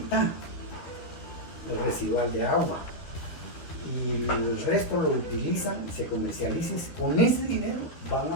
el residual de agua y el resto lo utilizan, se comercializan, con ese dinero van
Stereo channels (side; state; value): right; late; 12 ms